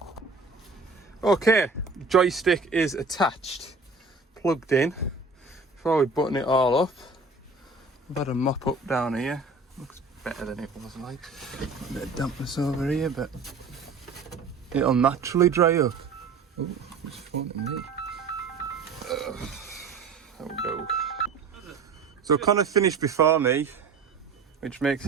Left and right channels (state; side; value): quieter; left; 4.2 dB